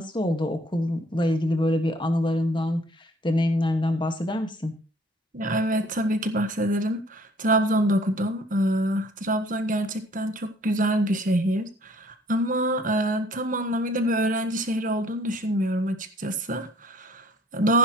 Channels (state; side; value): normal; both; correlation 0.57